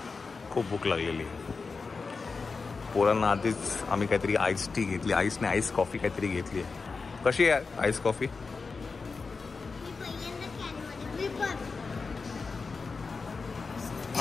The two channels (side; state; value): right; quieter; 4.5 dB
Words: खूप भूक लागलेली आहे. पोरांना आधीच आम्ही काहीतरी आईस टी घेतली, आईस कॉफी काहीतरी घेतली आहे. कशी आहे आईस कॉफी?